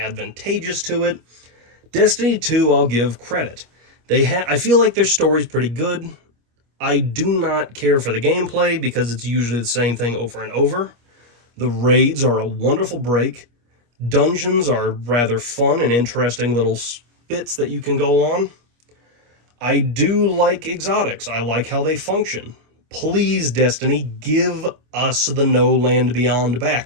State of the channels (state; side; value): late; left; 25 ms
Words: to it. Destiny 2, I'll give credit. I feel like their story's pretty good. I do not care for the gameplay because it's usually the same thing over and over. The raids are a wonderful break. Dungeons are rather fun and interesting little bits that you can go on. I do like exotics. I like how they function. Please, Destiny, give us the No Land Beyond